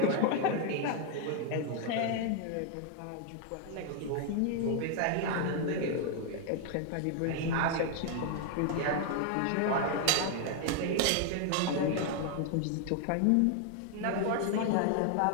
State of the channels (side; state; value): both; different; correlation 0.00